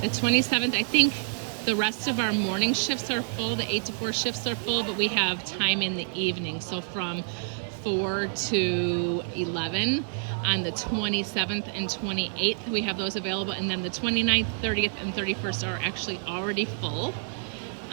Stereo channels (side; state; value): left; silent; digital silence